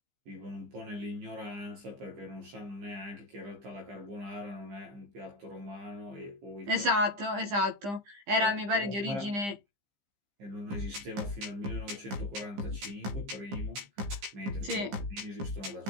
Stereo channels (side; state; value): left; late; 15 ms